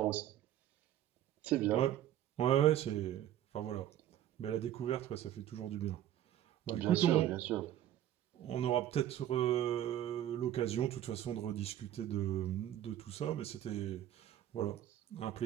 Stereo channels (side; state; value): left; quieter; 12.0 dB